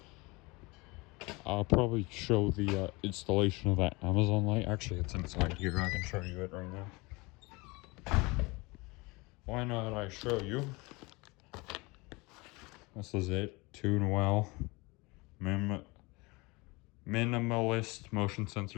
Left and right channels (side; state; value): right; quieter; 25.1 dB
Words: I'll probably show the installation of that Amazon light. Actually, it's inside here. I can show you it right now. Why not I show you? This is it. Tune well. Minimalist motion